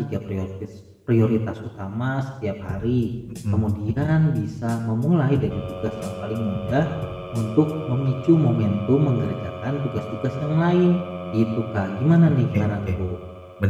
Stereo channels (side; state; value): both; identical; correlation 1.00